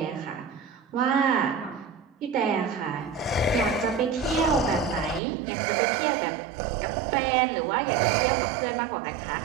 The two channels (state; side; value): drops out; left; at 5.2 s